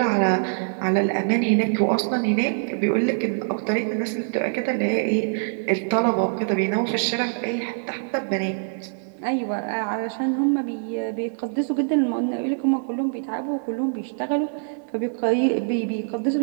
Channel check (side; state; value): left; silent; digital silence